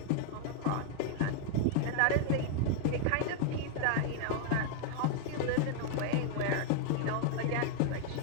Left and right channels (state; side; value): different; both; correlation 0.00